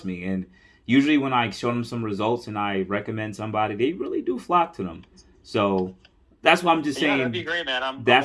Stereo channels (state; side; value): identical; both; correlation 1.00